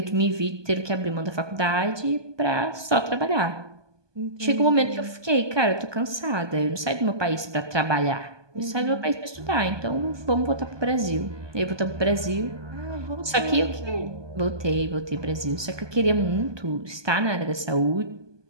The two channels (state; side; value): late; left; 1.2 ms